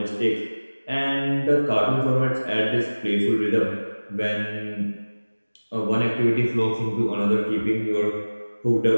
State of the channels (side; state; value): both; inverted; correlation -1.00